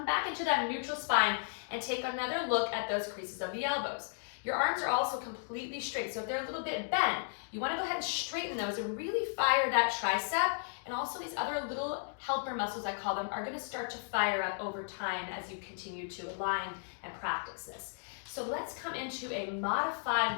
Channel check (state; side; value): silent; right; digital silence